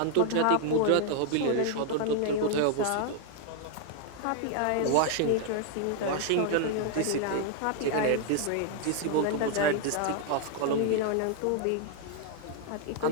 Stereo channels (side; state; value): both; different; correlation 0.00